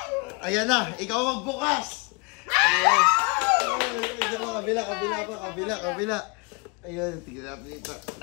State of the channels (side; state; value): right; quieter; 31.3 dB